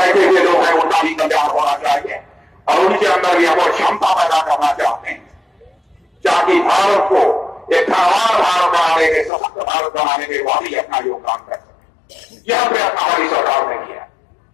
हुए लोग हैं, उनका भी कल्याण होना चाहिए और उनके अंदर यह वो क्षमता पैदा करना चाहते हैं ताकि भारत को एक धनवान भारत बनाने के, सशक्त भारत बनाने के वाकई अपना योगदान कर सके। यह प्रयत्न हमारी सरकार ने किया।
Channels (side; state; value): right; drops out; at 9.3 s